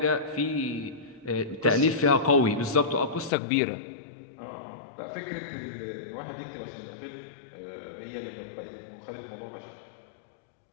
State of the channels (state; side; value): drops out; right; at 3.3 s